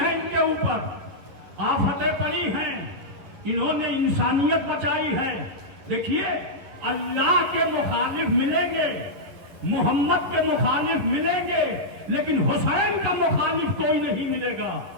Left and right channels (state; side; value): late; left; 11 ms